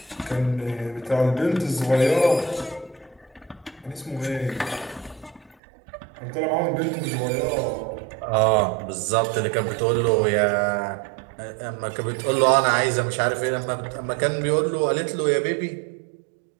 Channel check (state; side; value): drops out; left; at 5.6 s